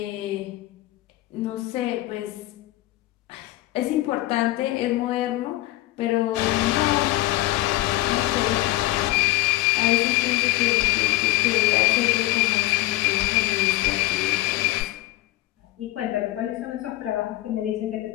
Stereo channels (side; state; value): right; quieter; 17.4 dB